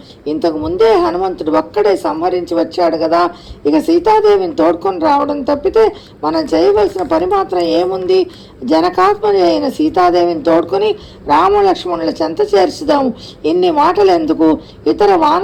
ఇంతకు ముందే హనుమంతుడు ఒక్కడే సంహరించి వచ్చాడు కదా. ఇక సీతాదేవిని తోడ్కొని రావడం తప్పితే మనం చేయవలసిన పని మాత్రం ఏముంది? జనకాత్మని అయిన సీతాదేవిని తోడ్కొని రామ లక్ష్మణుల చెంత చేర్చుదాము. ఇన్ని మాటలు ఎందుకు? ఇతర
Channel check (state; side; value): identical; both; correlation 1.00